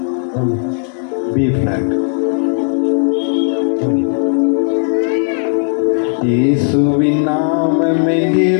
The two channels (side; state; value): right; silent; 58 dB below the other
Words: B flat. இயேசுவின் நாமமே